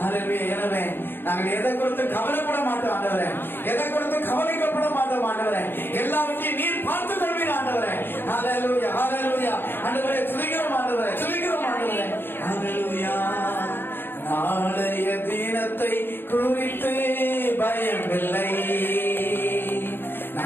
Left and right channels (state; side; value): late; right; 0.10 ms